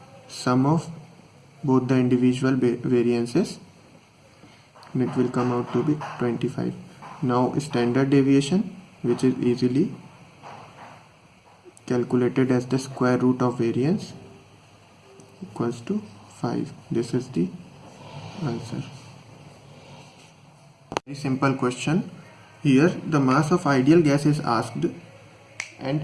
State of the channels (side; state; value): both; identical; correlation 1.00